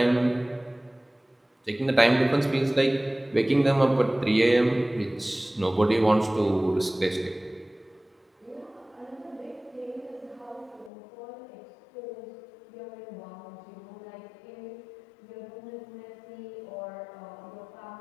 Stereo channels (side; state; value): right; drops out; at 10.9 s